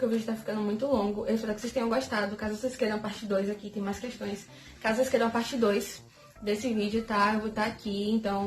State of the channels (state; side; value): identical; both; correlation 1.00